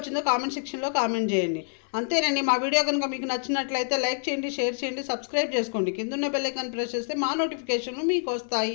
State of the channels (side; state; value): right; silent; 60 dB below the other